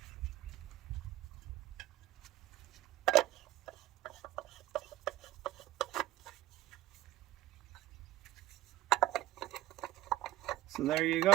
So there you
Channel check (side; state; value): left; quieter; 15.3 dB